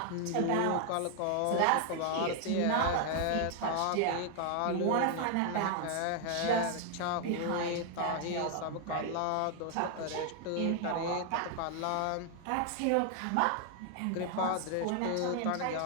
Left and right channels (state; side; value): different; both; correlation 0.00